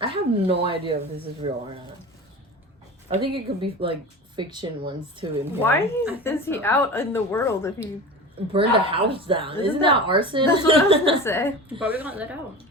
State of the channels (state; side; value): normal; both; correlation 0.32